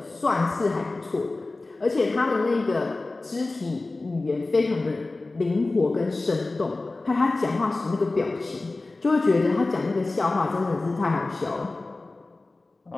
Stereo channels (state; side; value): quieter; right; 3.2 dB